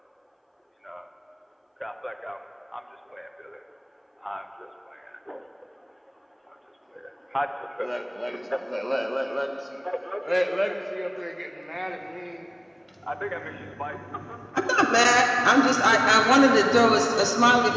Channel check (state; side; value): identical; both; correlation 1.00